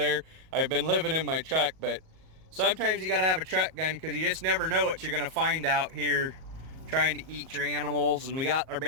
I've been living in my truck, but sometimes you got to have a truck gun because you just never know what you're going to find out here trying to eat your animals. And we got our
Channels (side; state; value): left; late; 38 ms